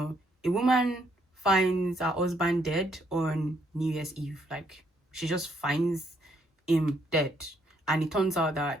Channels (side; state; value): both; normal; correlation 0.72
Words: a woman finds her husband dead on New Year's Eve. Like she just finds him dead, and it turns out that